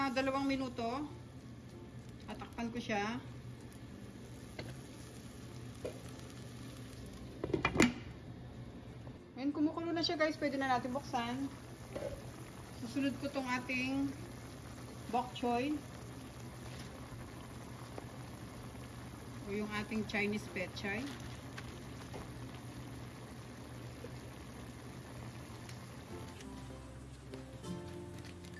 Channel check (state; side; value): identical; both; correlation 1.00